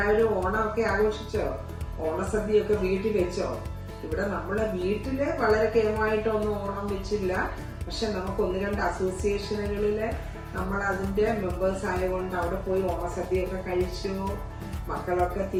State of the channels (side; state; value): both; identical; correlation 1.00